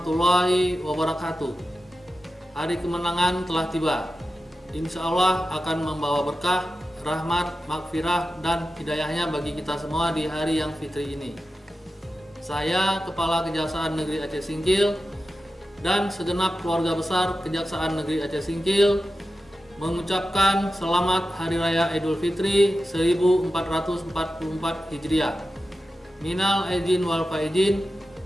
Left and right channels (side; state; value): both; normal; correlation 0.92